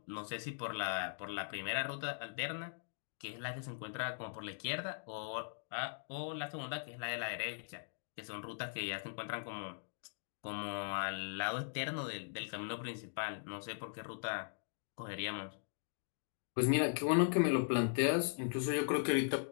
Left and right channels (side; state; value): right; silent; digital silence